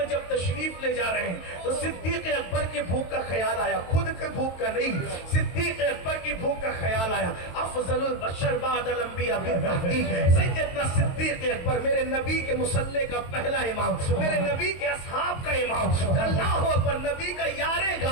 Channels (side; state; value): right; late; 22 ms